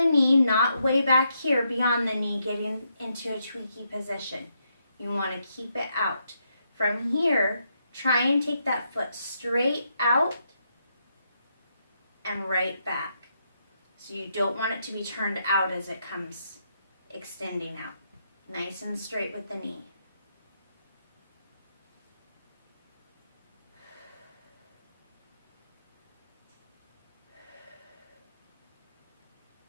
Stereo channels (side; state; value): both; inverted; correlation -0.79